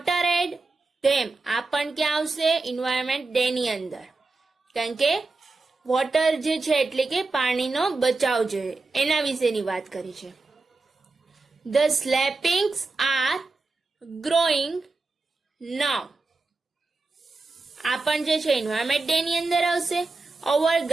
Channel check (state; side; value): quieter; left; 3.6 dB